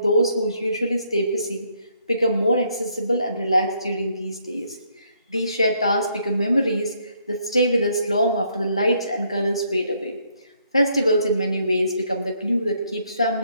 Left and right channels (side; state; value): both; inverted; correlation -0.71